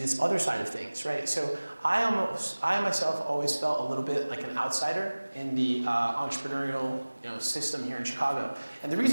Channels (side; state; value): both; inverted; correlation -1.00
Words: this other side of things, right? So I myself always felt a little bit like an outsider in the entrepreneurial system here in Chicago. And the